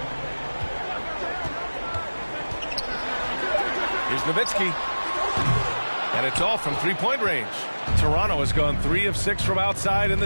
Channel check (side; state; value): both; inverted; correlation -1.00